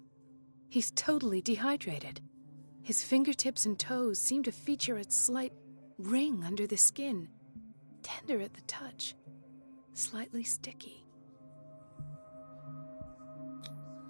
He's totally dehydrated. His fingertips and toes seem to feature a slight ring under the skin, tender at the touch, slightly sticky.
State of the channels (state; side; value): inverted; both; correlation -1.00